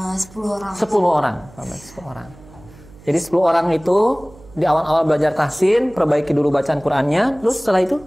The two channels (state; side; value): noise; right; hum, 23 dB below the sound